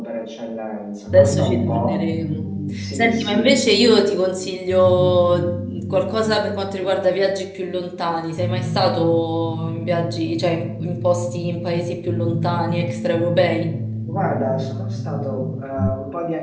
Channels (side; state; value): both; identical; correlation 1.00